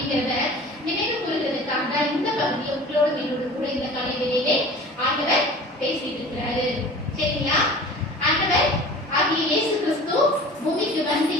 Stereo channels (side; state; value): both; normal; correlation 0.41